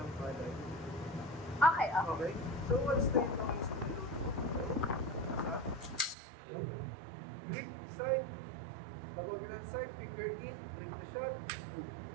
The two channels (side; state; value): left; drops out; at 6.2 s